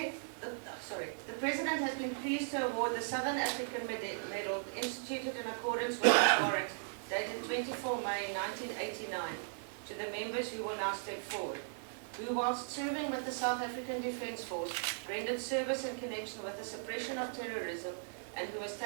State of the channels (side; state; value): left; silent; digital silence